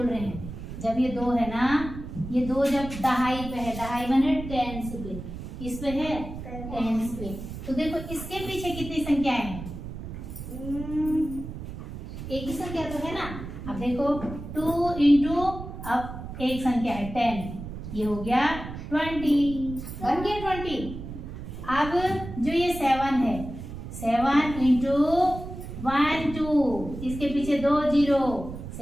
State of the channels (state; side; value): noise; right; rumble, 9 dB below the sound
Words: रहे हैं, जब ये 2 है ना, ये 2 जब दहाई पे है, दहाई माने टेंस पे, किस पे है, टेंस पे। तो देखो इसके पीछे कितनी संख्याएं हैं, एक ही संख्या तो है ना। अब देखो 2 × अब एक संख्या है 10, ये हो गया 20, बन गया 20। अब जो ये 7 है, 7 × 1 2, इसके पीछे 2 0,